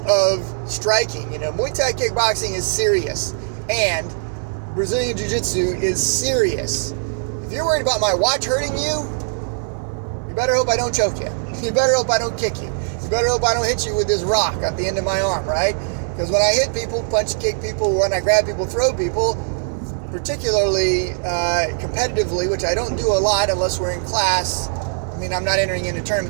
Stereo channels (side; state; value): left; silent; digital silence